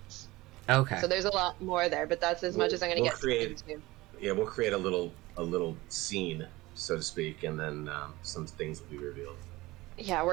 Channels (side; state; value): left; quieter; 19.9 dB